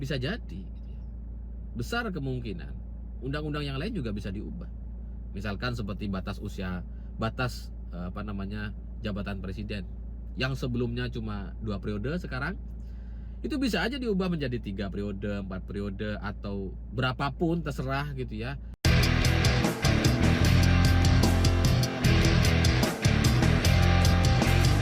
jadi gitu ya. Besar kemungkinan undang-undang yang lain juga bisa diubah. Misalkan seperti batas usia, batas jabatan presiden yang sebelumnya cuma 2 periode, sekarang itu bisa aja diubah menjadi 3 periode, 4 periode, atau berapapun terserah gitu ya.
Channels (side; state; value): both; identical; correlation 1.00